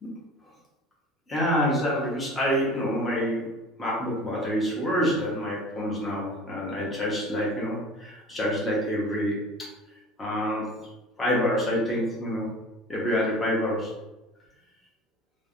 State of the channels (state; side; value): normal; both; correlation 0.41